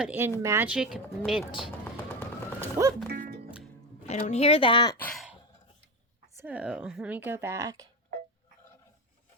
in magic mint. Whoop. I don't hear that. So let me go back.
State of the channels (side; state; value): both; normal; correlation 0.16